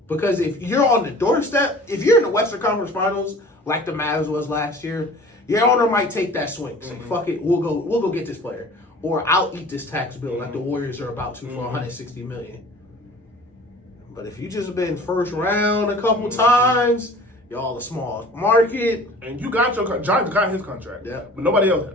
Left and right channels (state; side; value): normal; both; correlation 0.45